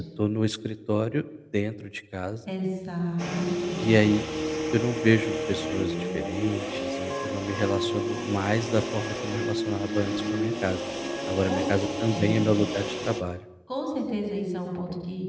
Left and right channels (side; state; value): both; identical; correlation 1.00